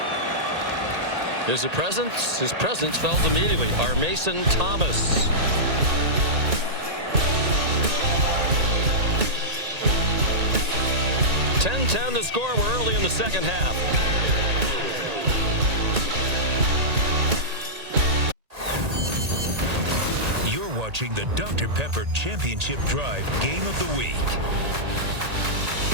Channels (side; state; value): left; late; 1.8 ms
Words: His presence felt immediately. Our Mason Thomas. 10-10 the score. We're early in the second half. You're watching the Dr. Pepper Championship Drive Game of the Week.